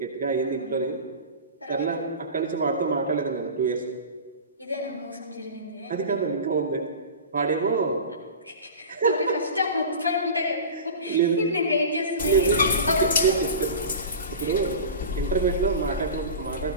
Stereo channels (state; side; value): inverted; both; correlation -0.33